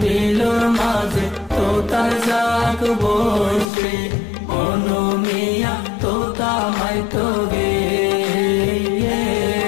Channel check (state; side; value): drops out; right; at 3.7 s